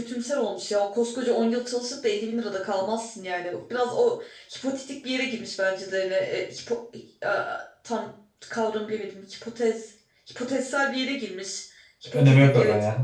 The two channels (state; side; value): identical; both; correlation 1.00